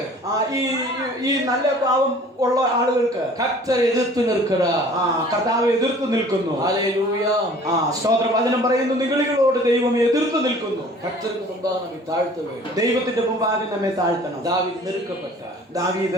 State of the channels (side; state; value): both; normal; correlation 0.49